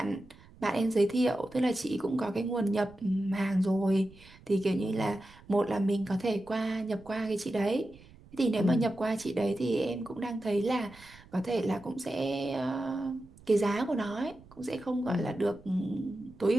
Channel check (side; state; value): right; noise; rumble, 24 dB below the sound